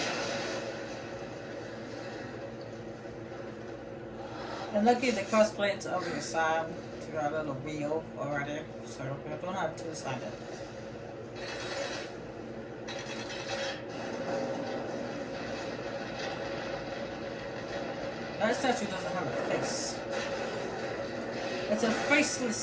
And lucky the Crossblade's over the side to got a little wheel already, so we don't have to sign it. That statue doesn't have a face. It's a faceless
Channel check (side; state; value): both; identical; correlation 1.00